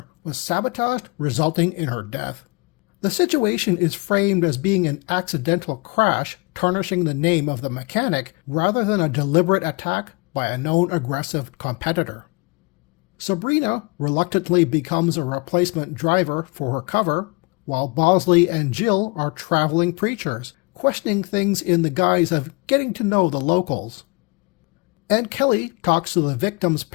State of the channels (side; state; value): right; quieter; 27.8 dB